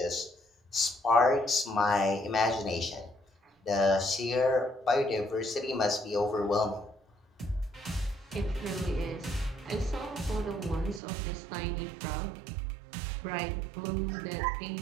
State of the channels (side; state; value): left; drops out; at 11.0 s